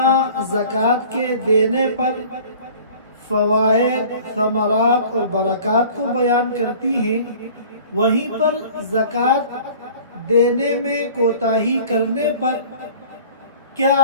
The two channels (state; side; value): inverted; both; correlation -0.46